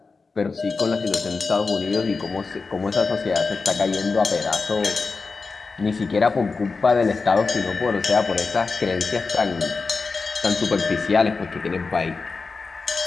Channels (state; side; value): quieter; right; 4.3 dB